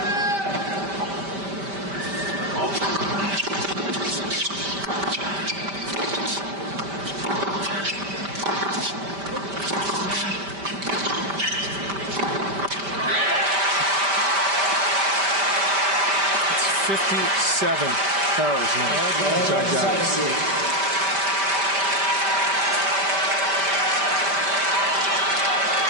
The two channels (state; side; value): late; left; 5.1 ms